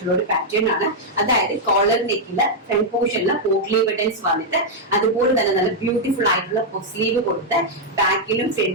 ഒരു പാറ്റേൺ ആണ്. അതായത് കോളർ നെക്കില് ഫ്രണ്ട് പോർഷനില് പോട്ട്ലീവ് ബട്ടൺസ് വന്നിട്ട് അതുപോലെ തന്നെ നല്ല ബ്യൂട്ടിഫുൾ ആയിട്ടുള്ള സ്ലീവ് കൊടുത്ത് ബാക്കിലും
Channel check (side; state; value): both; normal; correlation -0.03